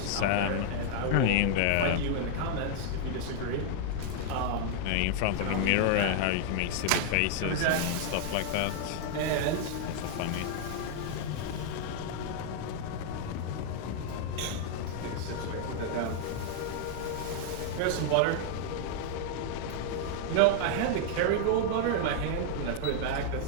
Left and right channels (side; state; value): both; different; correlation 0.00